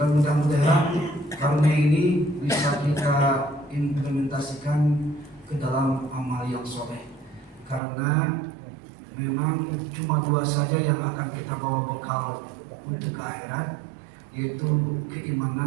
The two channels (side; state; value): left; drops out; at 7.8 s